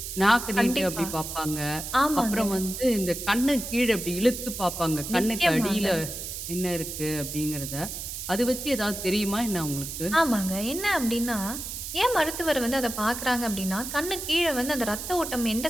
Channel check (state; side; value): noise; right; hiss, 7 dB below the sound